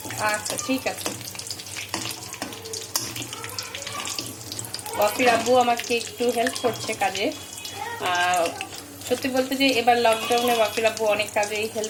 আচ্ছা, ঠিক আছে। ওয়াফির আব্বু আমাকে একটু হেল্প করছে কাজে। সত্যি বলতে যে এবার লকডাউনে ওয়াফির আব্বু অনেক কাজেই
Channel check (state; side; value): identical; both; correlation 1.00